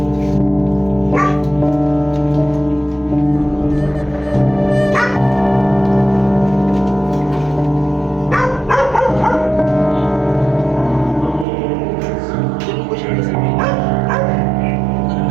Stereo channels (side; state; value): left; drops out; at 11.5 s